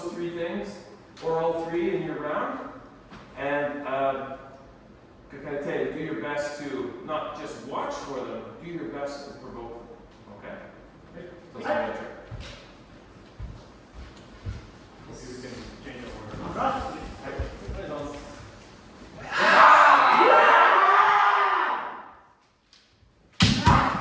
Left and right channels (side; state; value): both; identical; correlation 1.00